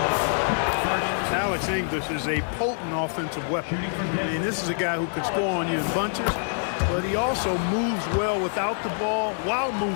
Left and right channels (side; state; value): right; silent; digital silence